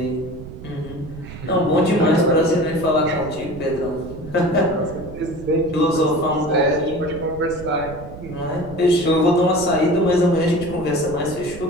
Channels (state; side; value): noise; right; rumble, 14 dB below the sound